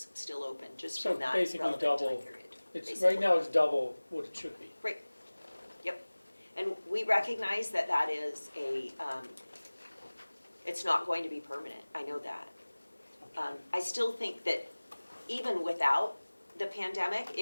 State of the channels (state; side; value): inverted; both; correlation -1.00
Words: still open, just So from that basically relevant double. time period. It's Basically. right now it's double what it should be. Right. Yep. And we recognize that that is it's not going to be permanent. I know that. I still think that even without the pandemic,